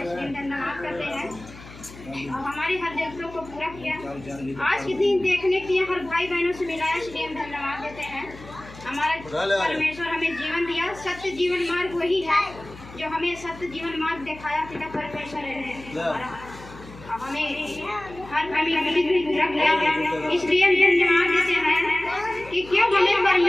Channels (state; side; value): noise; left; hum, 18 dB below the sound